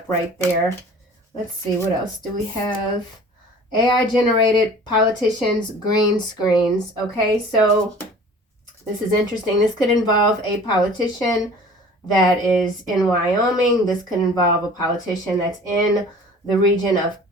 right there. Let's see, what else do we have? AI generated politicians, green screens. Okay, so this is interesting. This could involve a politician that is in Wyoming. This could involve a politician that's in the region of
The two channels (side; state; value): both; normal; correlation 0.45